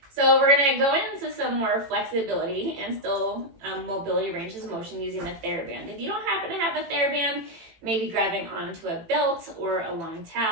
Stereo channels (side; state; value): left; late; 18 ms